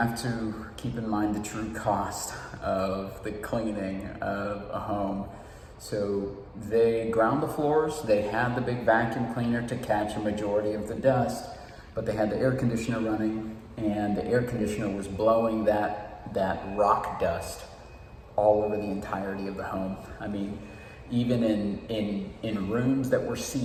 to keep in mind the true cost of the cleaning of a home. So they ground the floors, they had the big vacuum cleaner to catch a majority of the dust, but they had the air conditioner running, and the air conditioner was blowing that rock dust all over the entirety of the home. I mean, even in rooms that were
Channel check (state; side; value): identical; both; correlation 1.00